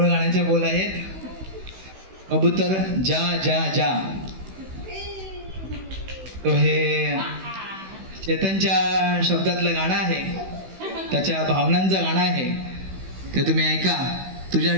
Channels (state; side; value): late; left; 16 ms